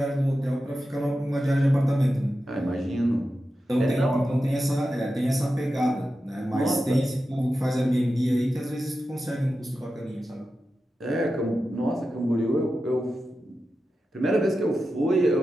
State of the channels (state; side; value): normal; both; correlation 0.91